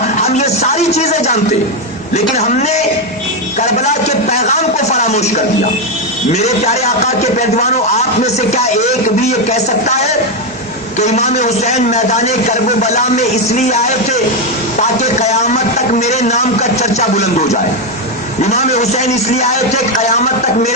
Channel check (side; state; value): both; normal; correlation 0.07